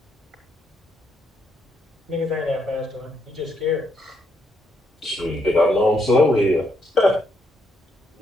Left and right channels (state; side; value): normal; both; correlation 0.76